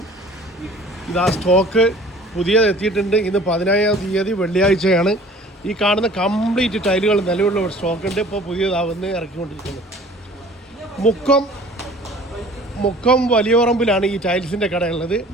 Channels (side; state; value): both; normal; correlation 0.48